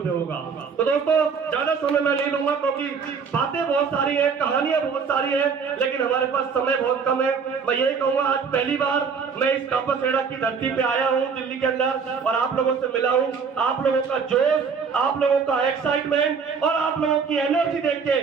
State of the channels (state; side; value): quieter; left; 5.8 dB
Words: पे होगा। तो दोस्तों ज्यादा समय मैं नहीं लूंगा क्योंकि बातें बहुत सारी है, कहानियां बहुत सारी है, लेकिन हमारे पास समय बहुत कम है। मैं यही कहूंगा आज पहली बार मैं इस कापासेड़ा की धरती पे आया हूँ दिल्ली के अंदर और आप लोगों से मिला हूँ। आप लोगों का जोश, आप लोगों का एक्साइटमेंट और आप लोगों की एनर्जी देख के